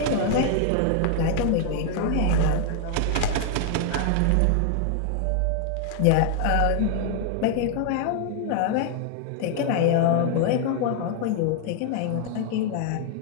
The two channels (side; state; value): both; different; correlation 0.00